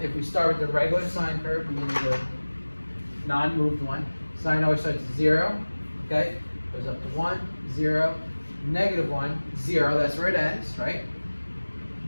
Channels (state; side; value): inverted; both; correlation -1.00